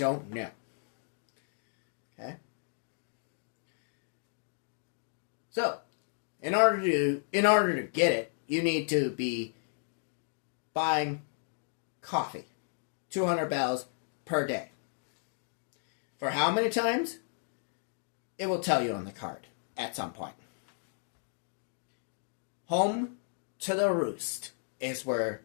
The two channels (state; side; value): silent; right; digital silence